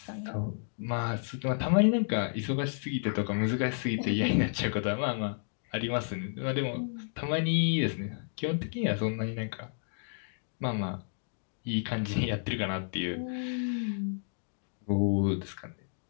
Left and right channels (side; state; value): right; silent; digital silence